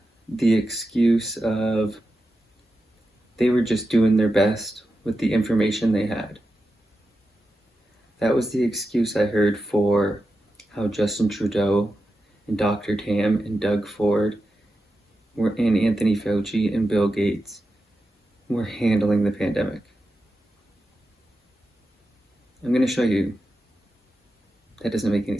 the excuse of they were just doing their best with the information they had. That was the excuse I heard for how Justin Trudeau and Dr. Tam and Doug Ford and Anthony Fauci and Bill Gates were handling the pandemic. I'm going to show you that doesn't make any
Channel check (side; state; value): both; normal; correlation 0.90